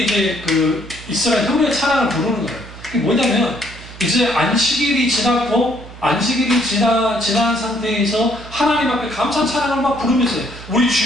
이제 그 이스라엘 형제 찬양을 부르는 거예요. 그게 뭐냐면 이제 안식일이 지났고 안식일이 지난 상태에서 하나님 앞에 감사 찬양을 막 부르면서 우리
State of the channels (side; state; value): right; noise; hum, 16 dB below the sound